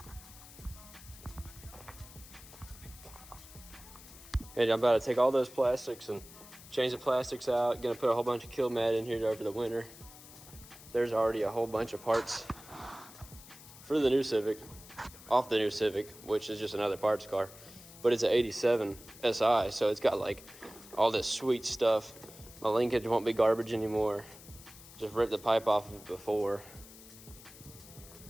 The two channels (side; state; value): left; noise; hiss, 18 dB below the sound